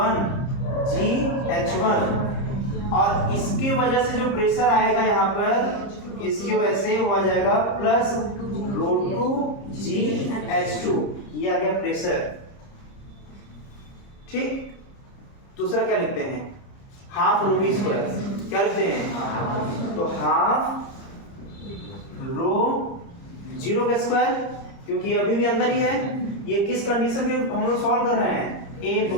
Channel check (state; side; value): late; right; 30 ms